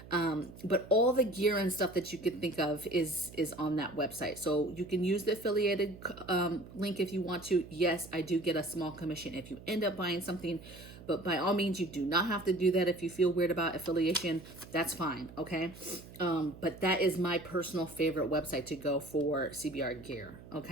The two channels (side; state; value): right; noise; hum, 17 dB below the sound